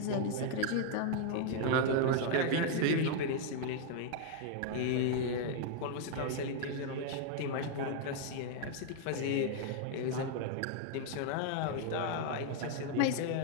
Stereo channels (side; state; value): both; different; correlation 0.00